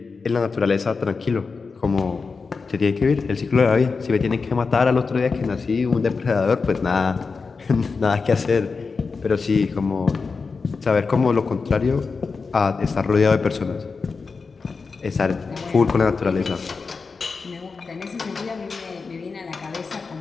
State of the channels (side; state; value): right; quieter; 4.7 dB